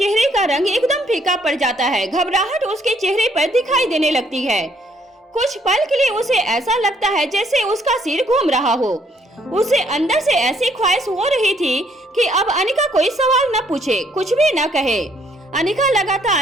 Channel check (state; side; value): normal; both; correlation 0.67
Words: का रंग एकदम फीका पड़ जाता है। घबराहट उसके चेहरे पर दिखाई देने लगती है। कुछ पल के लिए उसे ऐसा लगता है जैसे उसका सिर घूम रहा हो। उसे अंदर से ऐसी ख्वाहिश हो रही थी कि अब अनिका कोई सवाल न पूछे, कुछ भी न कहे। अनिका